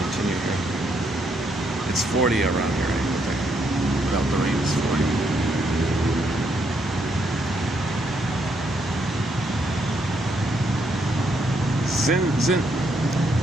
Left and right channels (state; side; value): normal; both; correlation 0.75